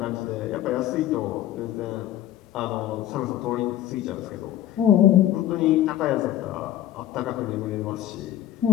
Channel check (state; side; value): quieter; right; 12.3 dB